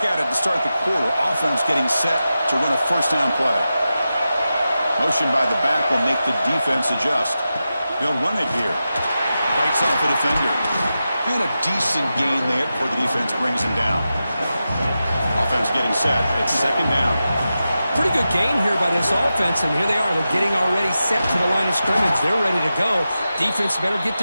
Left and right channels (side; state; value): both; inverted; correlation -0.91